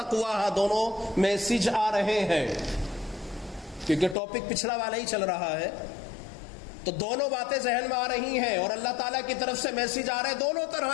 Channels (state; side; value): drops out; right; at 4.2 s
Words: دونوں میسج آ رہے ہیں کیونکہ ٹاپک پچھلا والا ہی چل رہا ہے، تو دونوں باتیں ذہن میں آ رہی ہیں اور اللہ تعالیٰ کی طرف سے میسج آ رہے ہیں دونوں